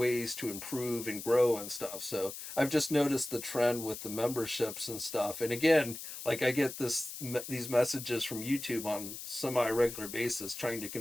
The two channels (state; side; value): noise; left; hiss, 9 dB below the sound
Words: to improve and grow and stuff. So I've just noticed the trend with the memberships and stuff. And again, like I get these messages from YouTube on semi-regular basis trying to